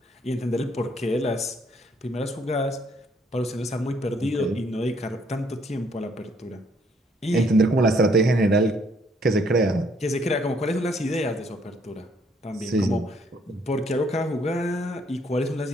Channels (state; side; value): normal; both; correlation 0.67